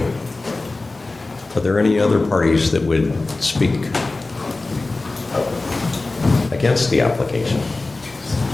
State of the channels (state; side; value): quieter; right; 3.3 dB